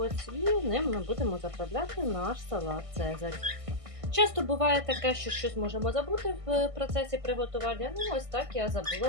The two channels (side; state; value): left; late; 1.6 ms